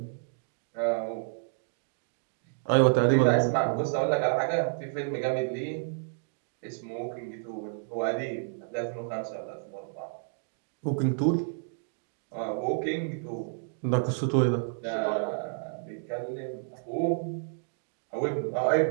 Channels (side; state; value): left; silent; digital silence